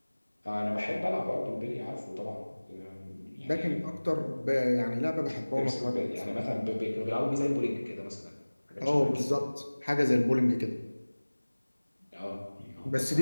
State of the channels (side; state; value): both; inverted; correlation -1.00